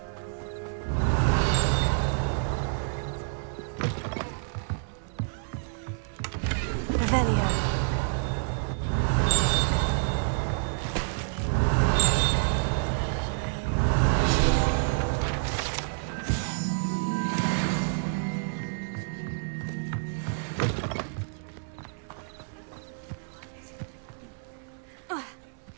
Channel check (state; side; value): silent; left; 59 dB below the other